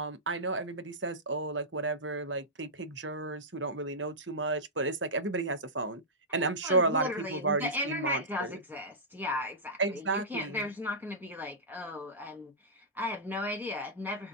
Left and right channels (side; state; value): both; normal; correlation -0.14